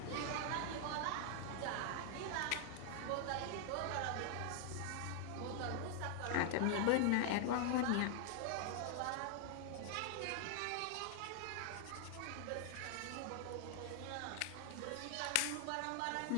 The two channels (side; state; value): both; different; correlation 0.00